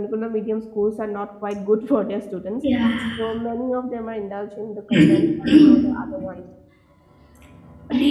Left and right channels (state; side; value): identical; both; correlation 1.00